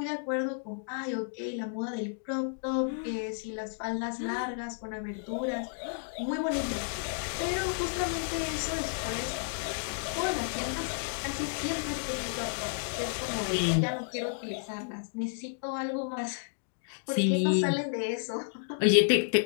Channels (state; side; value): silent; right; digital silence